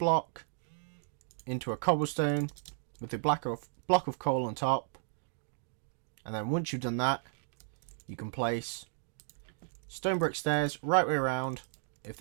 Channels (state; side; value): silent; left; digital silence